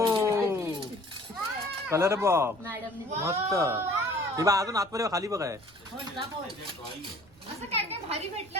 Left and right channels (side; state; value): right; noise; rumble, 27 dB below the sound